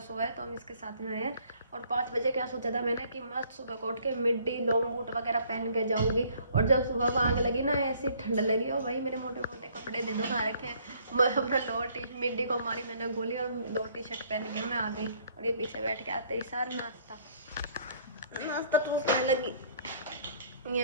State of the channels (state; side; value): inverted; both; correlation -0.60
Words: है तो हम इसके साथ में आए हैं। और 5 बजे क्या सोचा था मैंने कि मस्त सुबह को उठ के मिड्डी लॉन्ग बूट वगैरह पहन के जाऊँगी। और जब सुबह को आग लगी ना, ऐसी ठंड लगी और भाई मेरे मोटे मोटे कपड़े दे दो खा रखे हैं। मैं अपना लोअर टी मिड्डी को मारी मैंने गोली और 2 टी-शर्ट पहन के मैं आ गई। और ये पीछे बैठ के आते ही सार नाश्ता टूसने लगी